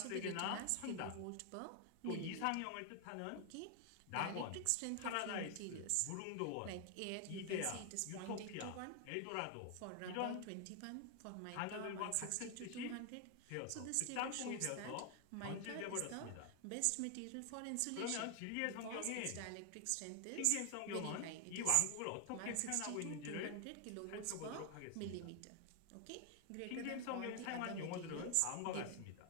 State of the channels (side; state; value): both; different; correlation 0.00